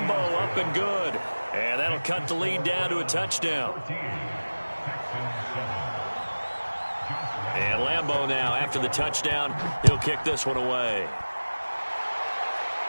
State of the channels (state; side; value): inverted; both; correlation -1.00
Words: up and good. And that'll cut the lead down to a touchdown. And Lambeau now, after the touchdown, he'll kick this one away.